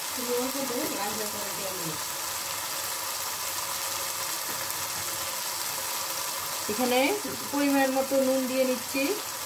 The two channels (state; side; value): identical; both; correlation 1.00